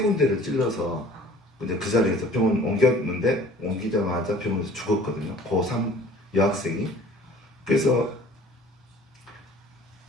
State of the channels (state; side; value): normal; both; correlation 0.49